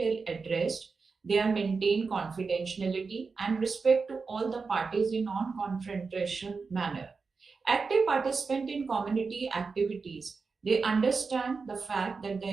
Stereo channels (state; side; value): quieter; left; 4.7 dB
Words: addressed. They are maintained confidentiality and respect to all the parties in non-confrontation manner. Active participant in community activities. They understand the fact that the